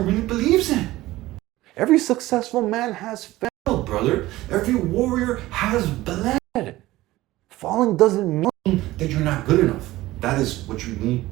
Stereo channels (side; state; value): left; quieter; 17.2 dB